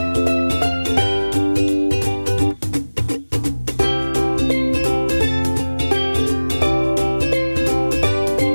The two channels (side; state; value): both; inverted; correlation -1.00